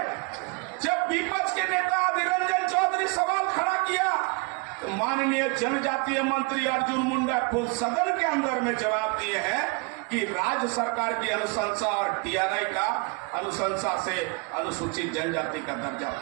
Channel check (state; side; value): quieter; left; 30.6 dB